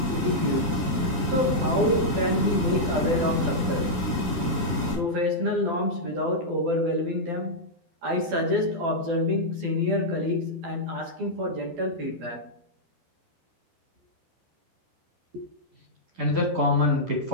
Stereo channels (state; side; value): late; left; 12 ms